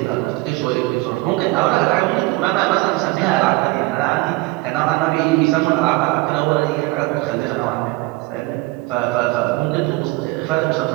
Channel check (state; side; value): quieter; left; 21.9 dB